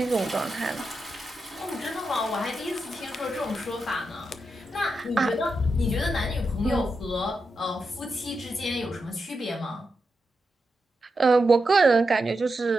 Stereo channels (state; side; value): normal; both; correlation 0.87